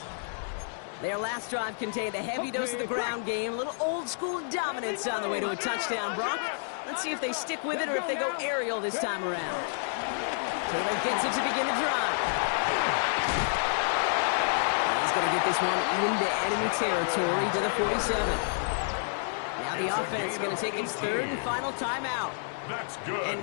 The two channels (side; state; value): right; silent; digital silence